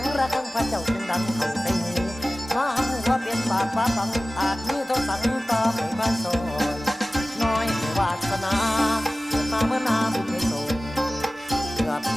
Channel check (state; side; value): normal; both; correlation 0.97